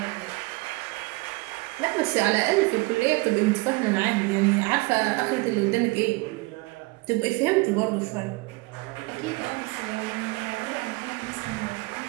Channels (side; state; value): left; quieter; 24.4 dB